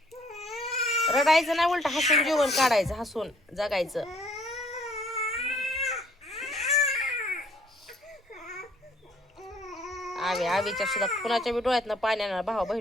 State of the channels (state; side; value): normal; both; correlation 0.61